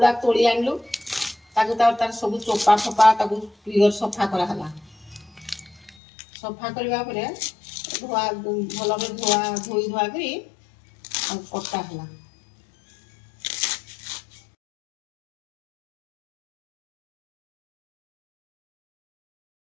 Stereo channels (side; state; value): right; drops out; at 6.0 s